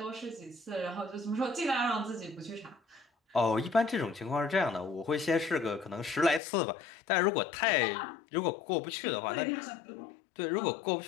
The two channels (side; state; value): right; drops out; at 6.4 s